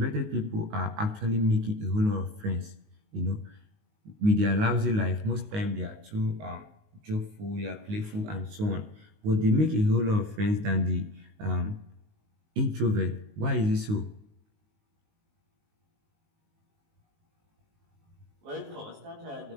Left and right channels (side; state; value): left; late; 19 ms